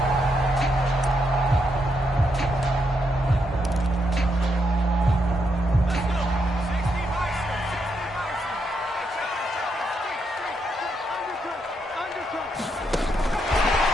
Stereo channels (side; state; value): both; normal; correlation 0.80